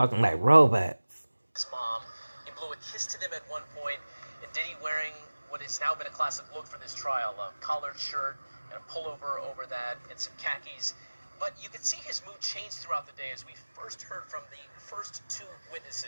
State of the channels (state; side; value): inverted; both; correlation -1.00